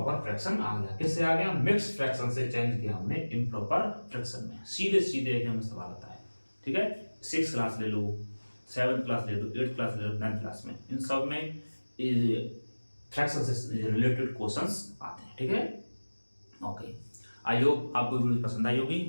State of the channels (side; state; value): both; inverted; correlation -1.00